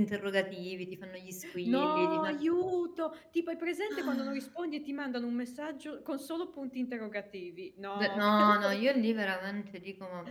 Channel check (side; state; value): both; identical; correlation 1.00